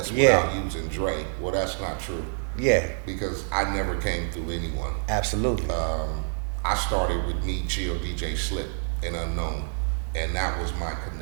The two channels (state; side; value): silent; left; digital silence